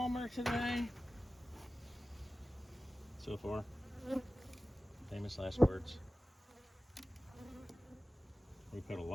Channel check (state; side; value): normal; both; correlation 0.96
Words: today. So far. Famous last words. We put a